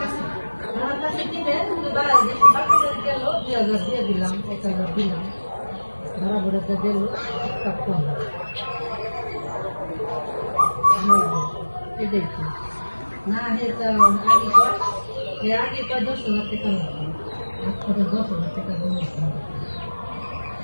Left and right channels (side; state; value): both; inverted; correlation -1.00